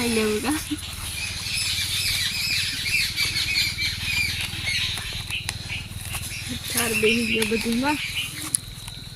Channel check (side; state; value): both; identical; correlation 1.00